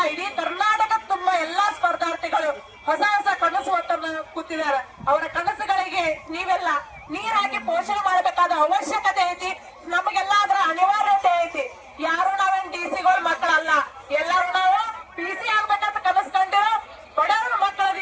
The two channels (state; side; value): identical; both; correlation 1.00